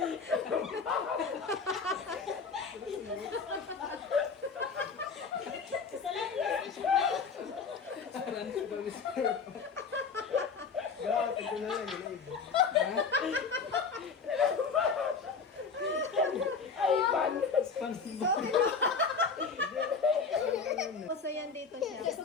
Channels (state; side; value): quieter; right; 5.2 dB